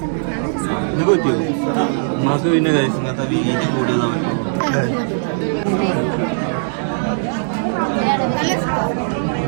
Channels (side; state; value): left; silent; digital silence